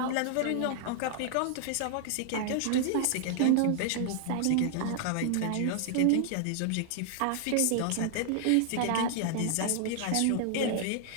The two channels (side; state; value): both; different; correlation 0.00